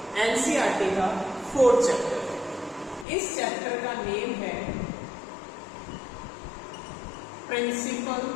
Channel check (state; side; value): drops out; right; at 3.1 s